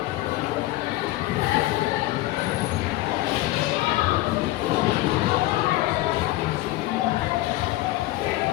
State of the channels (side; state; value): right; quieter; 17.4 dB